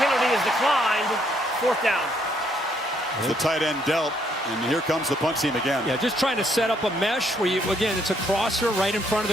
penalty is declined. 4th down. The tight end dealt, and here comes the punt team again. Yeah, just trying to set up a mesh where again, it's a crosser right in front of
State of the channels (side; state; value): both; normal; correlation 0.70